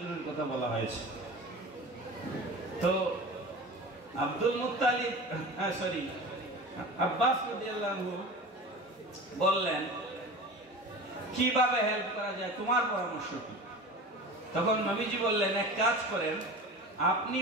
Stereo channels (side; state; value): both; normal; correlation 0.34